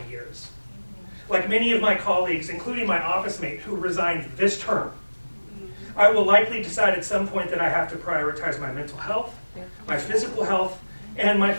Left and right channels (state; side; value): inverted; both; correlation -1.00